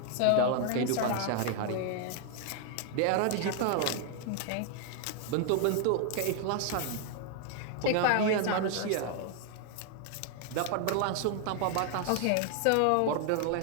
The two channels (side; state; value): both; different; correlation 0.00